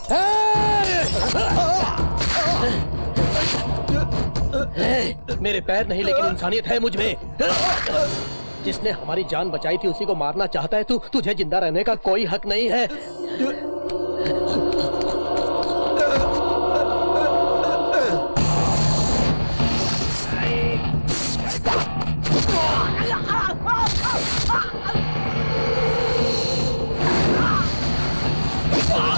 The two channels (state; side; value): inverted; both; correlation -1.00